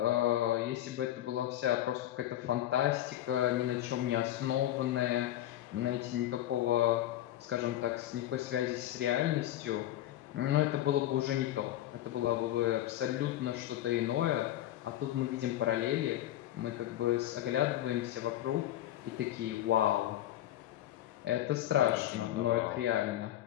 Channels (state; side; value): quieter; right; 13.3 dB